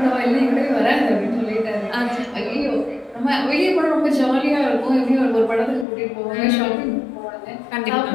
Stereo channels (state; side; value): drops out; right; at 5.9 s